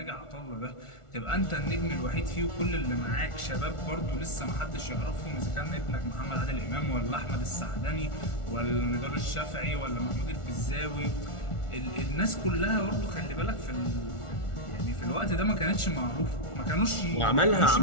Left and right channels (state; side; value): late; right; 1.4 ms